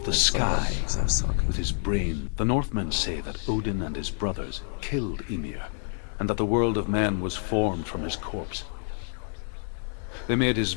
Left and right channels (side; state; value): right; silent; 55 dB below the other